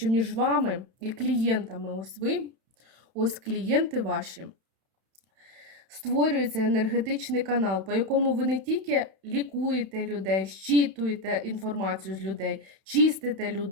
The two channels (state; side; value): late; left; 31 ms